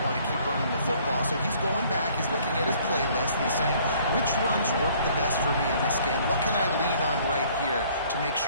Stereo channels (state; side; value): inverted; both; correlation -0.59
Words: want to keep running the football. So he's going back, he's looking at his playlist, and he's saying, which runs work the best for me in this game? What can I lean on right here to make